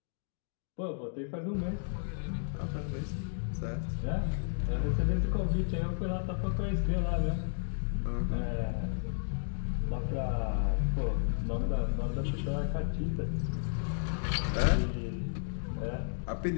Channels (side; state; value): right; silent; digital silence